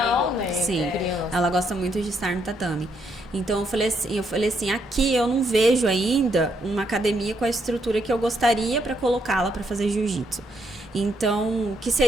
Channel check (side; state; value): both; normal; correlation 0.75